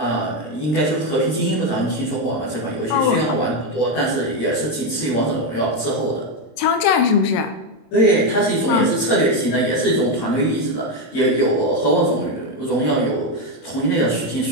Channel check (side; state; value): right; late; 26 ms